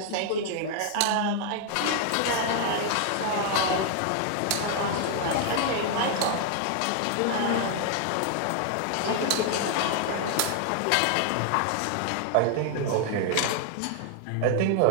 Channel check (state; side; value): different; both; correlation 0.00